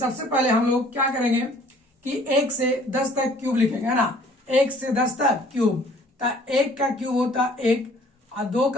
पहले हम लोग क्या करेंगे कि 1 से 10 तक क्यूब लिखेंगे, है ना। 1 से 10 तक क्यूब, तो 1 का क्यूब होता है 1 और 2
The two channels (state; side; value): normal; both; correlation 0.55